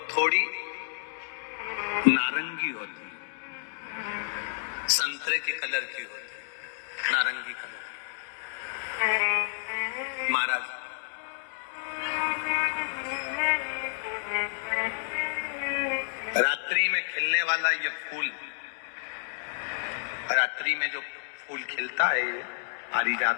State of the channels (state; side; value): silent; right; digital silence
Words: थोड़ी नारंगी होती है, संतरे के कलर की होती है, नारंगी कलर। महाराज रात्रि में खिलने वाला ये फूल, रात्रि में जो फूल खिलता है ये